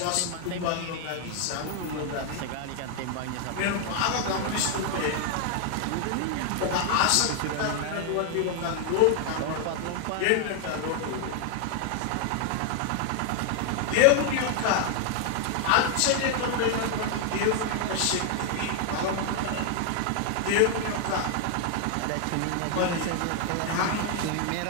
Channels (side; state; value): both; different; correlation 0.00